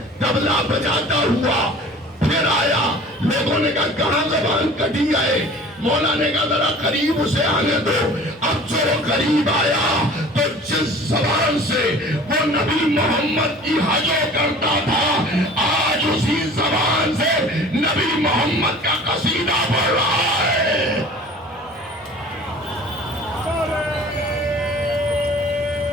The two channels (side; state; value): both; normal; correlation 0.45